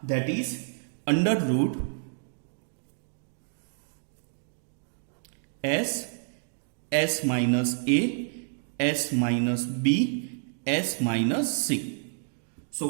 दैट इज अंडर रूट एस माइनस ए, एस माइनस बी, एस माइनस सी।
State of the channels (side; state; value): left; silent; digital silence